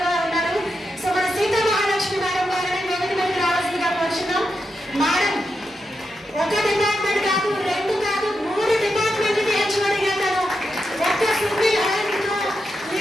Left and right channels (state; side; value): normal; both; correlation 0.86